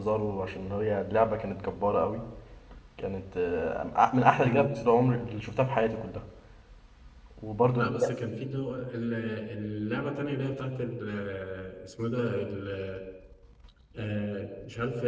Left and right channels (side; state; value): both; identical; correlation 1.00